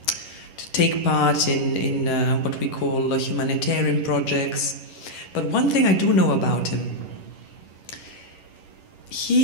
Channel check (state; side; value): late; right; 11 ms